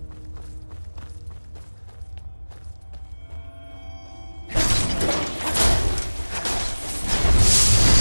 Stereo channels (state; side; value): inverted; both; correlation -1.00